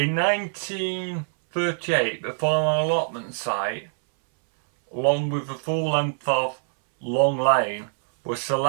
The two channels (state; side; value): silent; left; 62 dB below the other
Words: 1938, the former allotment site, along with the full length of Long Lane, was